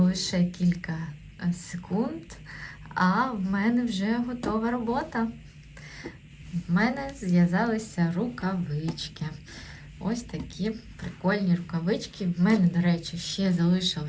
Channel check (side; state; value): both; identical; correlation 1.00